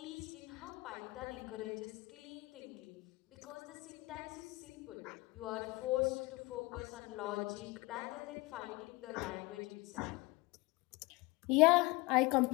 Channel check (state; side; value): quieter; right; 23.1 dB